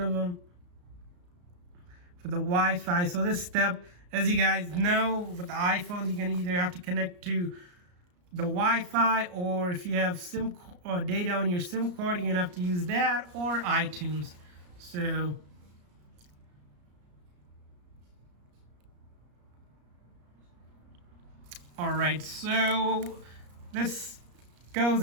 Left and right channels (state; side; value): late; left; 34 ms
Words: of them, for the Wi-Fi. So this step, as you guys know, with the iPhones, you're gonna either have to connect to the Wi-Fi, or if you have SIM or data on your SIM card, you're gonna have to use that or iTunes. So all right, so this goes